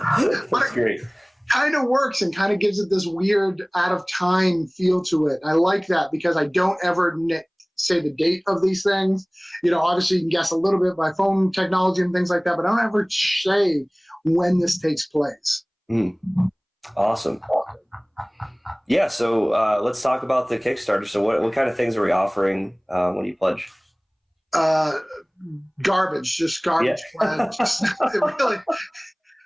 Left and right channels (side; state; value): both; identical; correlation 1.00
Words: great. Kind of works and kind of gives it this weird out of time feel to it. I like that because I don't ever say the date of these things. Obviously you can guess a little bit by phone technology and things like that, but I don't ever say when this takes place. Awesome. Yeah, so let's talk about the Kickstarter. So what kind of things are we offering when you pledge? Garbage, just garbage. Yeah.